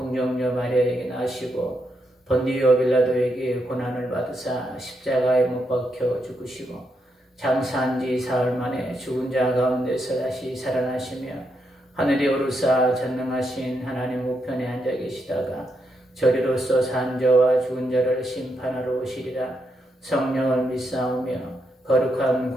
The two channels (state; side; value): normal; both; correlation 0.81